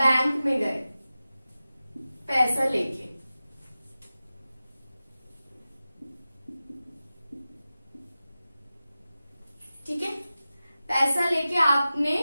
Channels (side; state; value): both; inverted; correlation -0.95